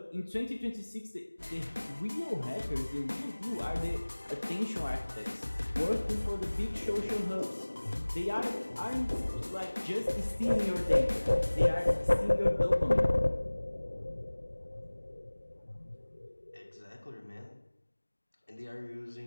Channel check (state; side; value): inverted; both; correlation -1.00